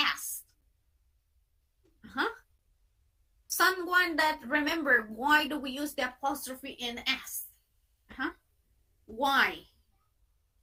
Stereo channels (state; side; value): identical; both; correlation 1.00